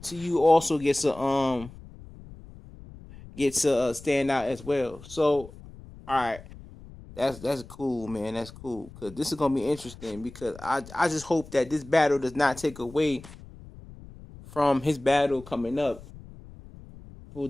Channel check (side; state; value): left; noise; rumble, 18 dB below the sound